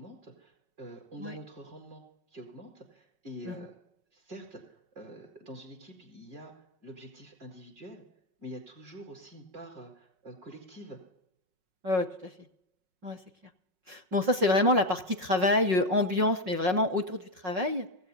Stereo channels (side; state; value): left; late; 5.4 ms